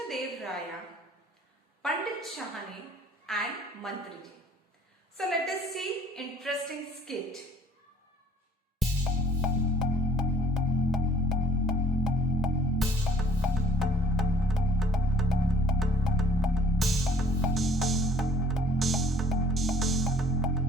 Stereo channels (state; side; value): normal; both; correlation 0.57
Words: Dev Raya, Pandit Shahani and Mantriji. So let us see interesting skit.